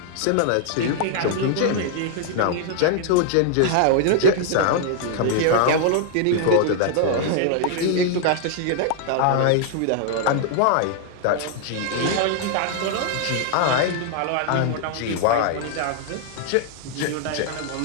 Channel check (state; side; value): different; both; correlation 0.00